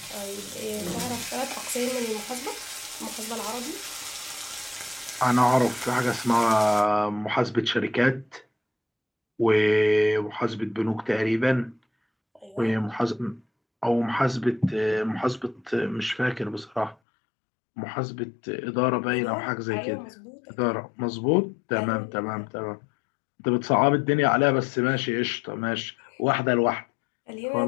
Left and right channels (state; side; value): drops out; right; at 16.9 s